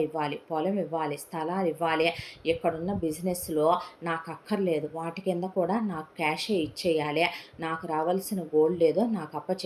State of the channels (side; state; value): both; identical; correlation 1.00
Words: ఇవ్వాలి. పొలం ఇవ్వాలి, స్థలాలు ఇవ్వాలి. ఇక్కడున్న బిజినెస్లో నాకు అక్కర్లేదు, వాటి కింద కూడా నాకు క్యాషే ఇచ్చేయాలి. నాకు రావాల్సిన గోల్డ్ ఏదో నాకు